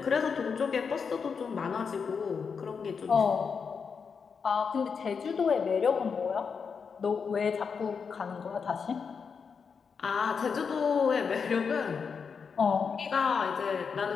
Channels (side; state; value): right; quieter; 5.9 dB